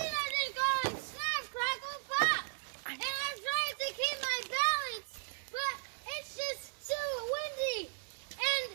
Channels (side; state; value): left; silent; digital silence